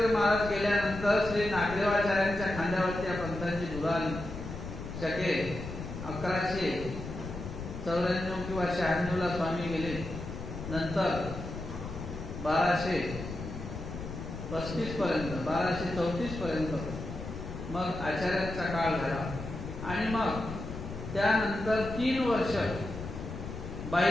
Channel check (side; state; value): left; noise; rumble, 8 dB below the sound